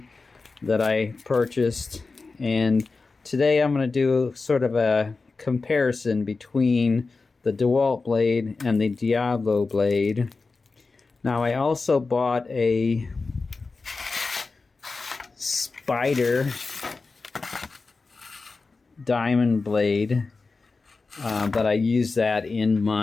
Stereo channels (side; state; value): right; quieter; 4.0 dB